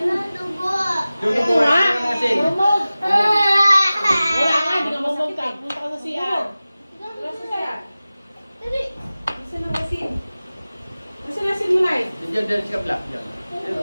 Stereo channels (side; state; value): both; inverted; correlation -0.97